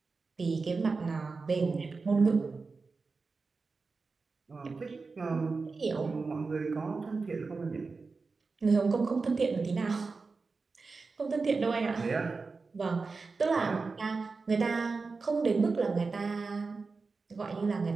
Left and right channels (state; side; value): quieter; left; 4.3 dB